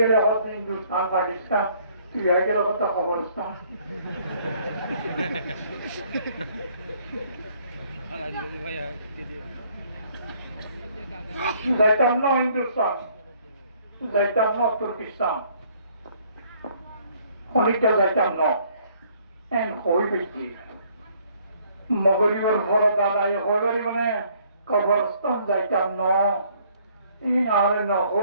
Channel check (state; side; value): inverted; both; correlation -0.63